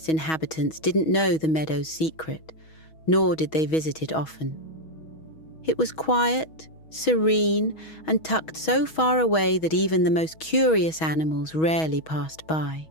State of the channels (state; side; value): late; right; 6.3 ms